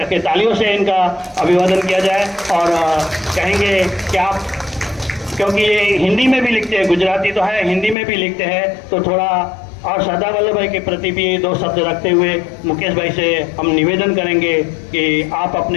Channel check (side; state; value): right; drops out; at 8.0 s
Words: तालियों से इनका अभिवादन किया जाए। और कहेंगे कि आप, क्योंकि ये हिंदी में भी लिखते हैं, गुजराती तो है, हिंदी में भी लिखते हैं, तो थोड़ा और सरदार वल्लभ भाई के प्रति भी 2 शब्द रखते हुए मुकेश भाई से हम निवेदन करेंगे कि आप